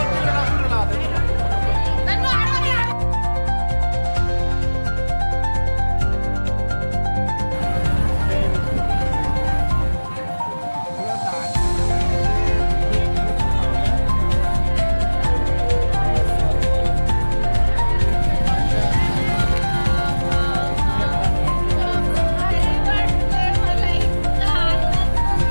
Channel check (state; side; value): inverted; both; correlation -1.00